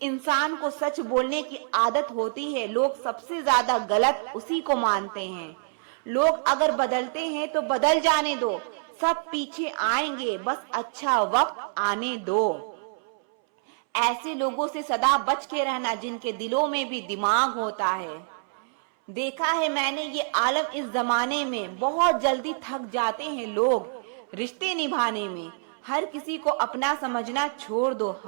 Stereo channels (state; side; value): silent; left; 61 dB below the other